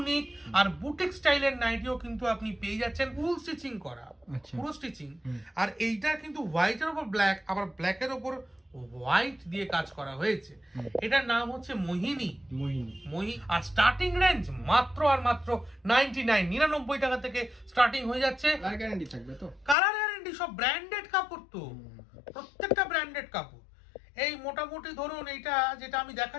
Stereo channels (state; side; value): drops out; right; at 19.8 s